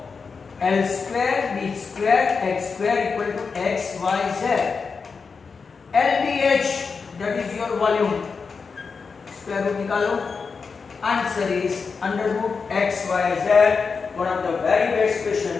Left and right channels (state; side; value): quieter; right; 5.1 dB